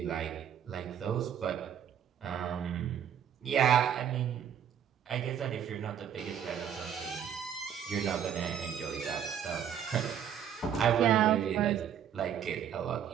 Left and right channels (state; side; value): quieter; left; 8.9 dB